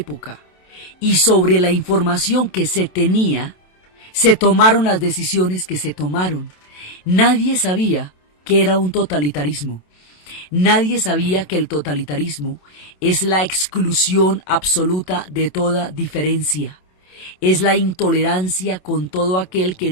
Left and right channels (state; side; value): late; right; 27 ms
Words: Y sobre la información que se tenía, se tomaron las decisiones que se tomaron. Nadie sabía que era un totalitarismo. Nadie sabía que el totalitarismo es la exclusión absoluta de toda diferencia. Es la intolerancia con todo aquel que